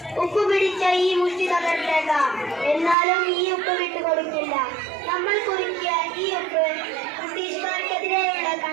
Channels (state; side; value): drops out; left; at 3.0 s